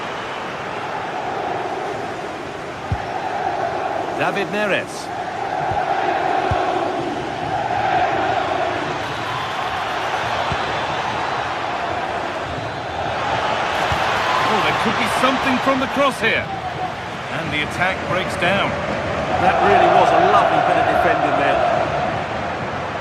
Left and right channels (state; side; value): identical; both; correlation 1.00